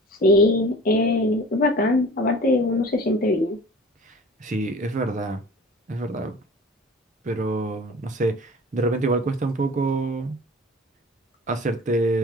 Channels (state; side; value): normal; both; correlation 0.42